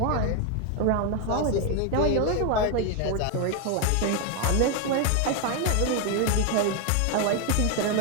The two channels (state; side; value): different; both; correlation 0.01